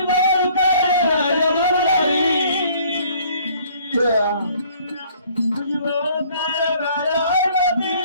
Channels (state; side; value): inverted; both; correlation -0.57